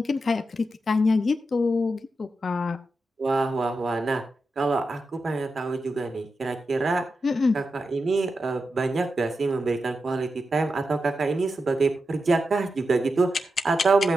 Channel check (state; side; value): normal; both; correlation 0.88